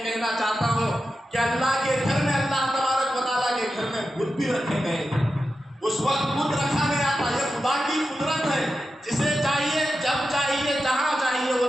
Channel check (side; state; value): both; normal; correlation 0.91